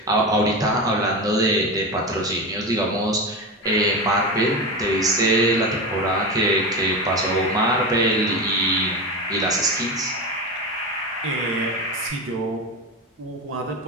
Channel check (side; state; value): both; normal; correlation 0.21